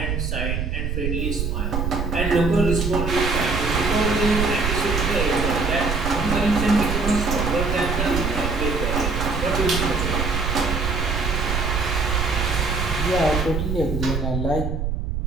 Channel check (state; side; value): noise; right; rumble, 1 dB below the sound